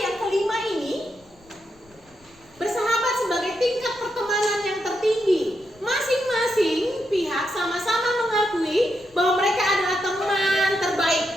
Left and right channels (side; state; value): left; noise; rumble, 29 dB below the sound